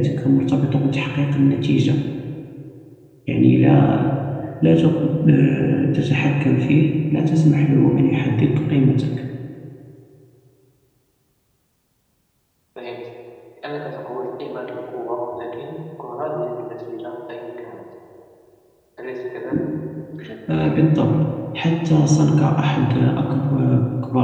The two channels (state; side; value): identical; both; correlation 1.00